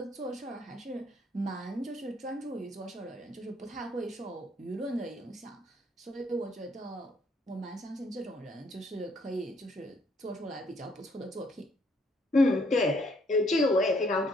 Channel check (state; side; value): normal; both; correlation 0.68